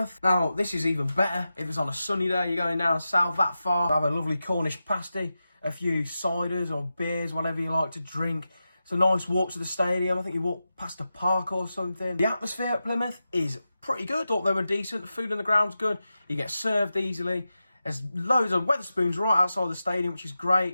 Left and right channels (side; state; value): both; inverted; correlation -0.91